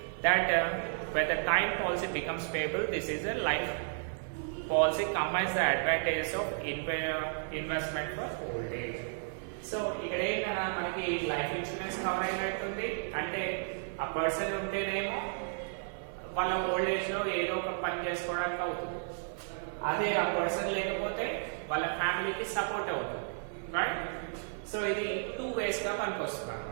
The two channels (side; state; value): left; silent; 56 dB below the other